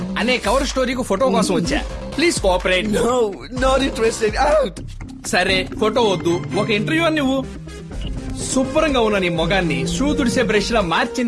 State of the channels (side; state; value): both; identical; correlation 1.00